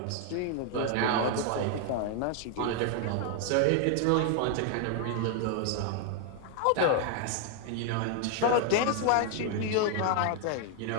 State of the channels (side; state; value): both; different; correlation 0.00